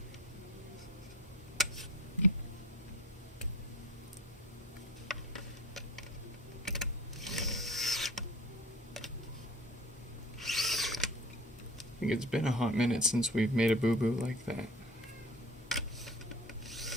I think it's been a hot minute since we've made a boo-boo like that.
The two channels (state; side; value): normal; both; correlation 0.42